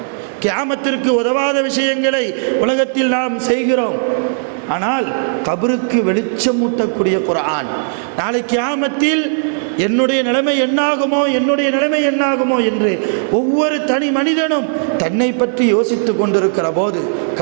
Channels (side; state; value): left; silent; digital silence